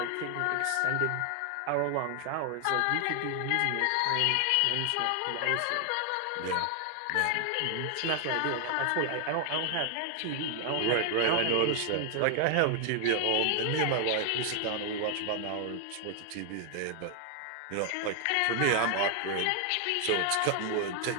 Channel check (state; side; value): different; both; correlation 0.00